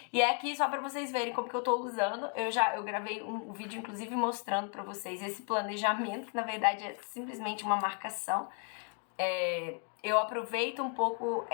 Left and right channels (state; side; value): quieter; right; 36.0 dB